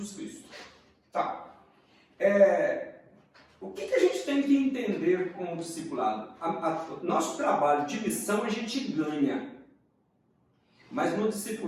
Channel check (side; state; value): both; identical; correlation 1.00